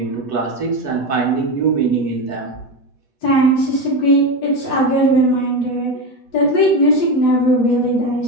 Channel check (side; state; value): right; late; 8.3 ms